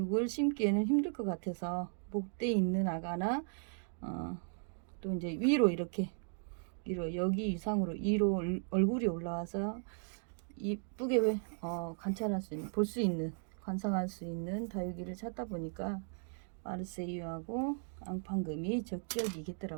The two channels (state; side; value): silent; left; 53 dB below the other